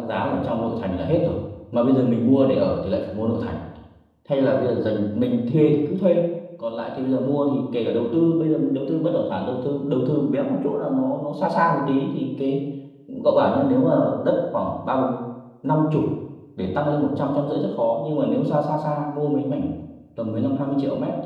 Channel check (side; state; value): both; identical; correlation 1.00